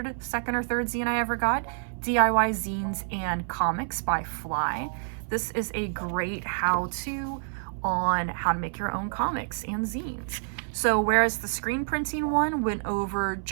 second or third zine I ever got, DIY Zines and Comics by Fly. This is a great how-to on how to make your own comics and zines. So whereas the screen printing one went over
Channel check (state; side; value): silent; left; 59 dB below the other